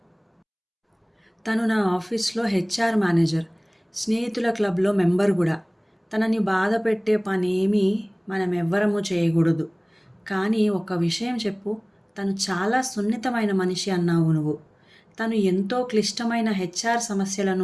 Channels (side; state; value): both; identical; correlation 1.00